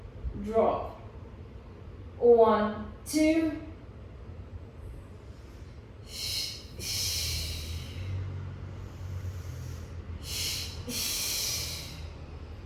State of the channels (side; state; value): both; identical; correlation 1.00